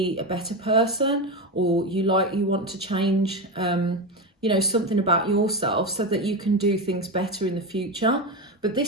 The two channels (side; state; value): both; normal; correlation 0.16